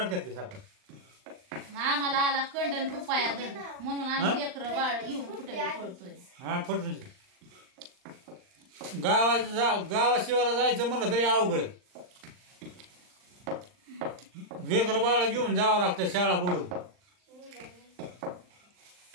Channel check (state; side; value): late; left; 39 ms